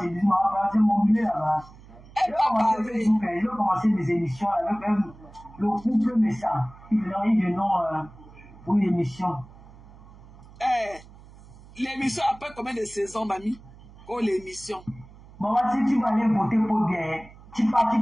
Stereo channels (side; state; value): right; noise; hum, 21 dB below the sound